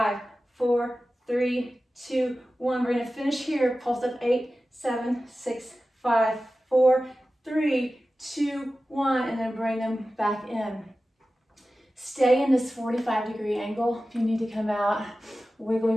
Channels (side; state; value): both; normal; correlation 0.95